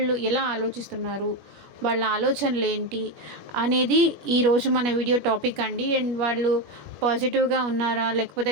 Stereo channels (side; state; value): left; late; 21 ms